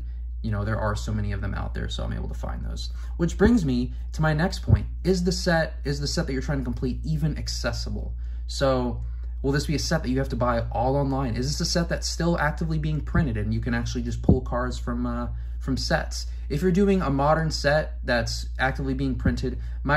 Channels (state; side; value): identical; both; correlation 1.00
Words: you know, there are so many of them out there, so I'm able to find those. Which brings me to my next point. Is the set that you're trying to complete even accessible? So Will this be a set that you have to buy all online? Is this a set that's still actively being printed and you can actually just pull cards from sets? If you're doing a modern set that's actively being printed,